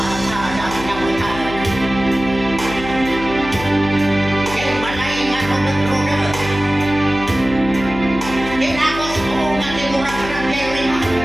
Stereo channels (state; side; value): noise; left; hum, 11 dB below the sound